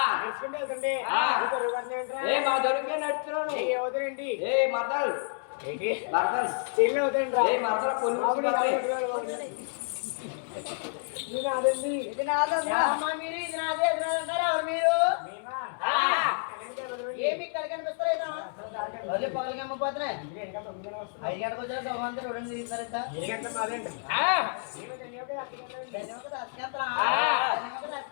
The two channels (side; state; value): right; silent; 58 dB below the other